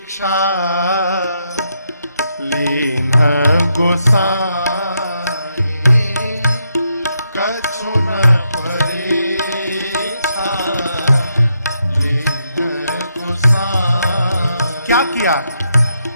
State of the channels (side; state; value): both; inverted; correlation -0.80